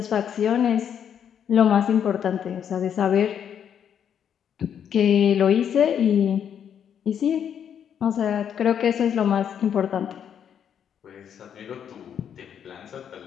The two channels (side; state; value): right; quieter; 8.6 dB